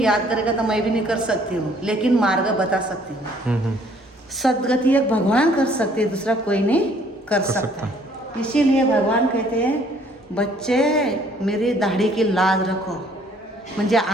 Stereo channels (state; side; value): normal; both; correlation 0.61